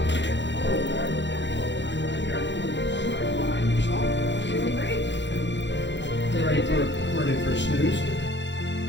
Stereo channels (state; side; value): late; right; 0.52 ms